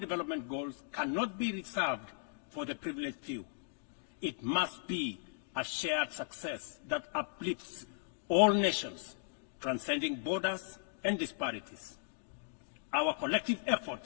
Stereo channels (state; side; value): silent; right; digital silence